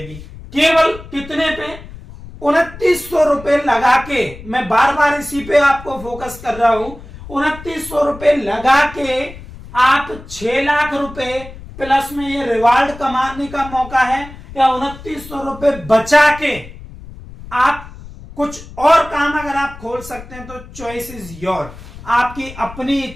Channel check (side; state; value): left; noise; rumble, 16 dB below the sound